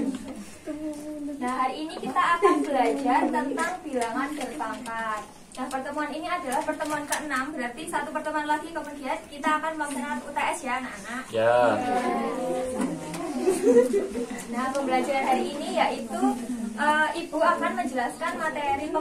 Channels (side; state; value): both; identical; correlation 1.00